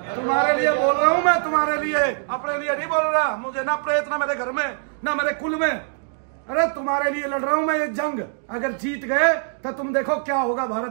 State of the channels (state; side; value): silent; left; digital silence